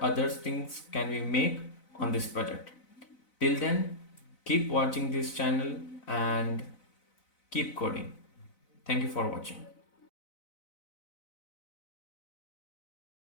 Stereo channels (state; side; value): late; right; 4.0 ms